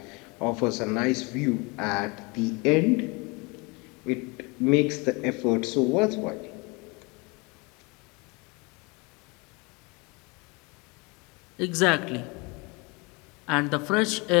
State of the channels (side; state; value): right; quieter; 28.1 dB